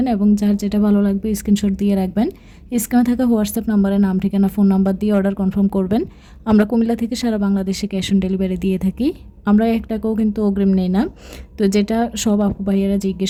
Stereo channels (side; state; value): both; identical; correlation 1.00